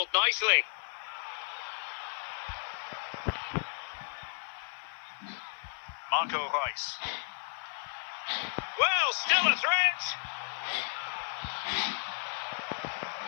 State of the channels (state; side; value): silent; right; 55 dB below the other